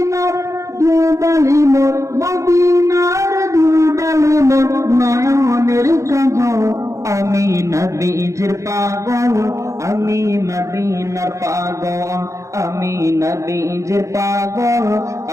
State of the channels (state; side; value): late; left; 0.15 ms